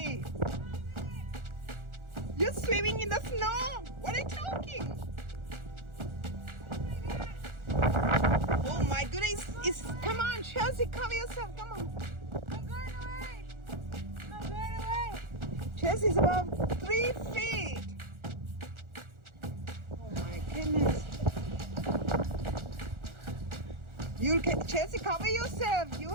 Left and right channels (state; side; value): late; left; 1.4 ms